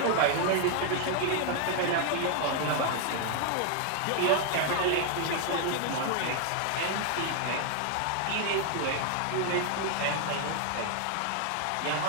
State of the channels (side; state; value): both; different; correlation 0.00